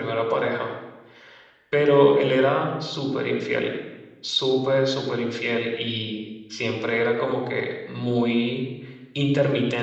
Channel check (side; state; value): both; identical; correlation 1.00